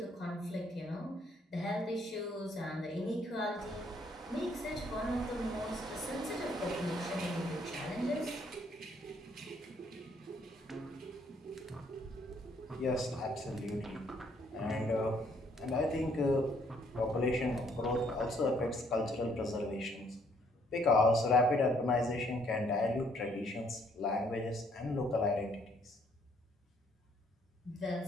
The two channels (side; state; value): both; normal; correlation 0.66